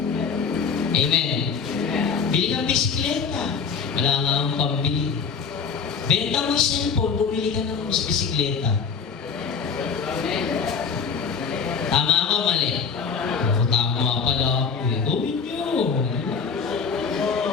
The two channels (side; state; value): right; quieter; 5.8 dB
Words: Amen. Bili kang bisikleta. Wala nga akong pambili. Benta mo yung cellphone, bumili ka ng bisikleta. Tama ako, mali? Tama pala ako Gawin nyo.